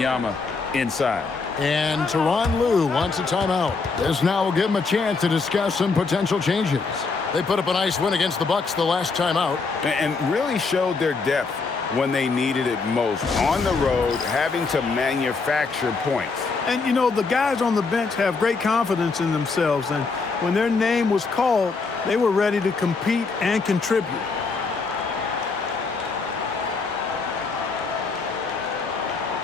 inside. And Tyronn Lue wants a timeout. This now will give him a chance to discuss some potential changes. They put up a nice win against the Bucks the last time out. And really showed their depth when they needed it most. On the road, having to manufacture points. And, you know, the guys on the bench have great confidence in themselves. And when their name was called, they were ready to compete and contribute.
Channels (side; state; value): right; quieter; 4.4 dB